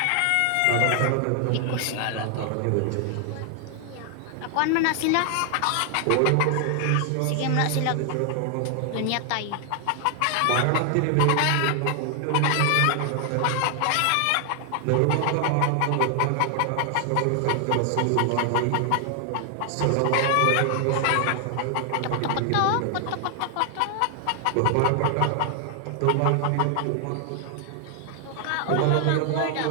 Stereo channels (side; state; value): both; different; correlation 0.00